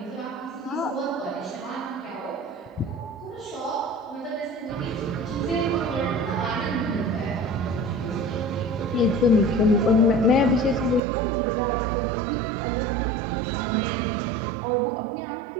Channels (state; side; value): drops out; left; at 11.0 s